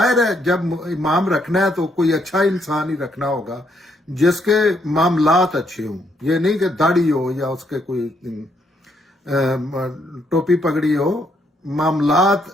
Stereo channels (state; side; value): normal; both; correlation 0.73